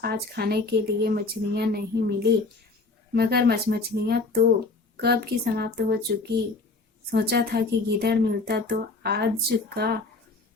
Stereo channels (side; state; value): right; quieter; 3.6 dB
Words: आज खाने के लिए मछलियां नहीं मिली? मगरमच्छ, मछलियां तो कब की समाप्त हो चुकी। सोचा था कि गीदड़ मिलता तो आज का